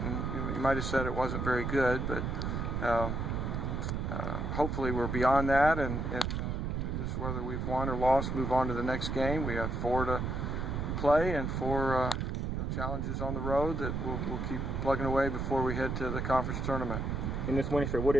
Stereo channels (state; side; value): noise; right; rumble, 2 dB below the sound